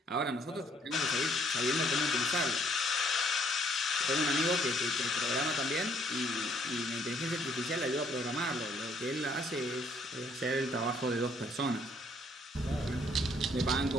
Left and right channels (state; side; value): normal; both; correlation 0.66